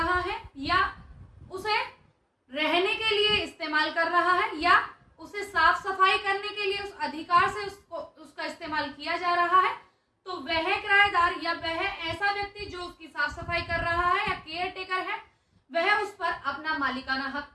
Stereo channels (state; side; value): identical; both; correlation 1.00